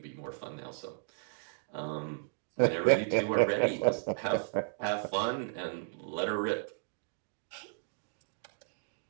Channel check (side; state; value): left; silent; digital silence